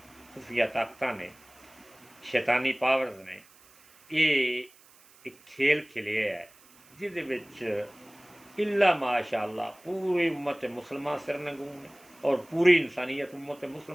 खुफिया ताकत ने, शैतानी पावर्स ने ये एक खेल खेलिया है जिहदे विच इल्ला माशाअल्लाह पूरी उम्मत मुसलमान सिरनगून है। और पूरी इंसानियत उम्मत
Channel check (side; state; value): right; noise; hiss, 26 dB below the sound